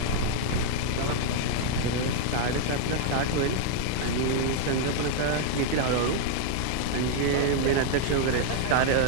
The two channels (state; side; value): different; both; correlation 0.00